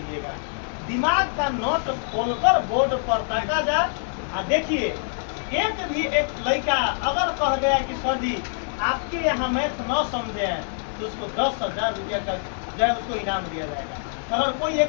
दिमाग का नोट खोलकर बोर्ड पर ताका जा और देखिए, एक लड़का अगर कह दे कि सर जी आपके यहाँ मैथ न समझे हैं तो उसको 10,000 रुपये का जो है उसको इनाम दिया जाएगा। अगर कोई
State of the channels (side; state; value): right; silent; digital silence